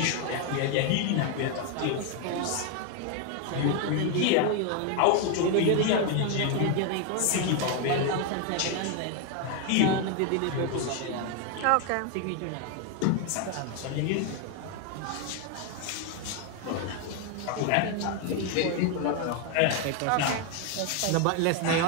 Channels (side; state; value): both; different; correlation 0.01